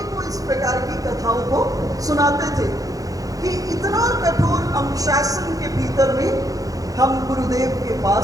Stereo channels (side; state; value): left; late; 0.17 ms